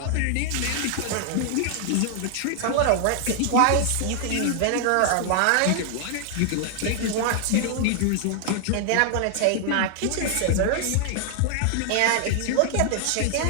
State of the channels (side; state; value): both; different; correlation 0.00